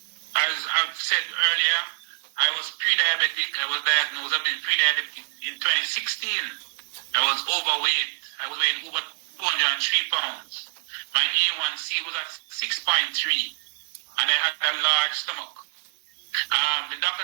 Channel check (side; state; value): left; silent; digital silence